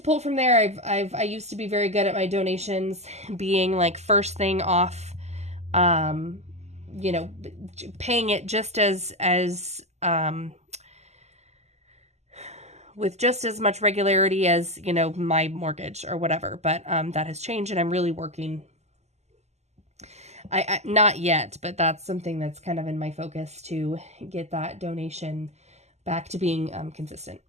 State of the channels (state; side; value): late; left; 0.32 ms